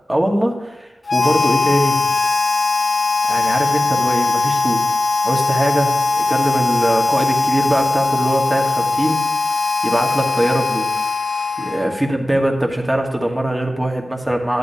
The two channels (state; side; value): normal; both; correlation 0.95